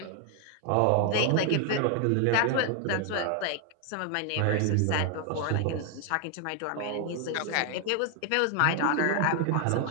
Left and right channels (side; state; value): both; different; correlation 0.00